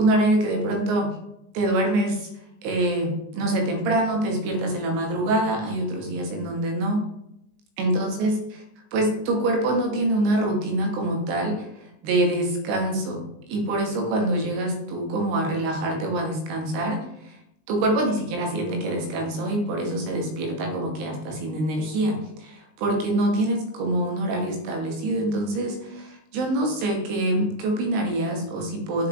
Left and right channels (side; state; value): left; late; 19 ms